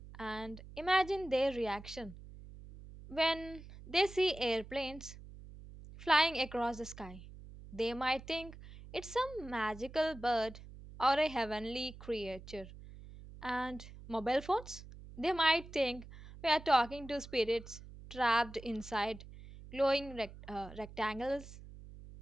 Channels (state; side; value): noise; right; hum, 16 dB below the sound